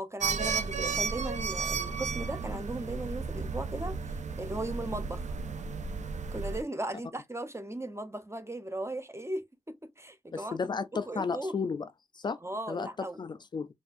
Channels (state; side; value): normal; both; correlation 0.61